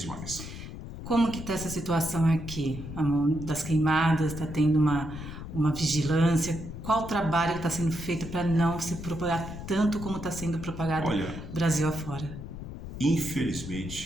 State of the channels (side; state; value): left; noise; rumble, 10 dB below the sound